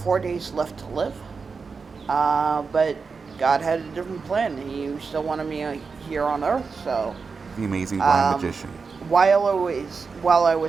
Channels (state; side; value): quieter; left; 5.0 dB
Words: days left to live. But God had a different plan. He still wanted me here on Earth, so... The amazing blind magician. While I